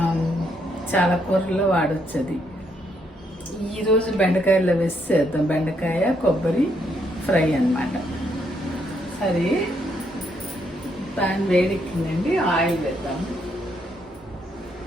చాలా కూరల్లో వాడచ్చు. అది ఈరోజు బెండకాయలో వేసి చేద్దాం. బెండకాయ కొబ్బరి ఫ్రై అన్నమాట. సరే, ప్యాన్ వేడెక్కిందండి, ఆయిల్ వేద్దాం.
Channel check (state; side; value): normal; both; correlation 0.74